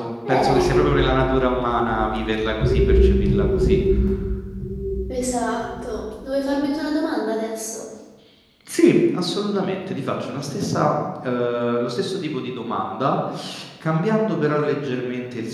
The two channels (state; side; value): identical; both; correlation 1.00